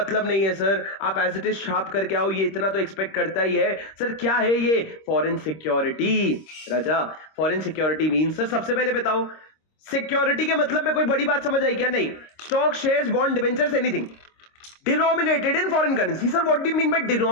नहीं है सर, आप एज इट इज छाप करके आओ, ये इतना तो एक्सपेक्ट करता ही है। सर क्या है ये, फॉरेन सिक्योरिटी। राजा फॉरेन सिक्योरिटी मीन, सर सबसे पहले बताओ सिक्योरिटी के मतलब में कोई बड़ी बात समझ आई क्या, नहीं, stock, shares, bond, debentures, anything denominated in foreign currency. Sir what do you mean by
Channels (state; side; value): late; right; 26 ms